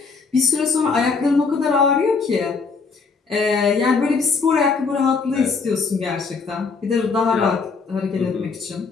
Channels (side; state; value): right; quieter; 4.8 dB